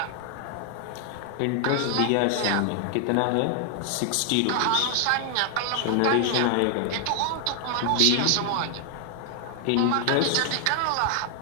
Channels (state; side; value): different; both; correlation 0.00